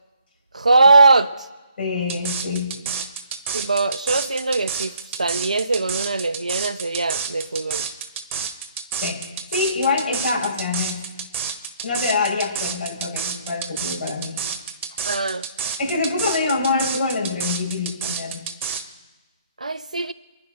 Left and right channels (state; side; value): inverted; both; correlation -0.65